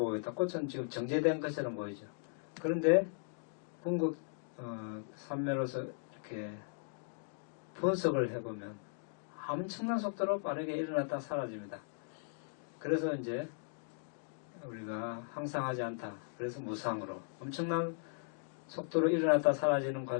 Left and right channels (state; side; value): silent; right; digital silence